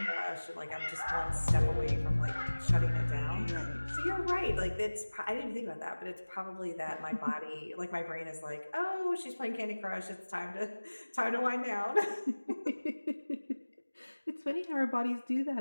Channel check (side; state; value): both; inverted; correlation -1.00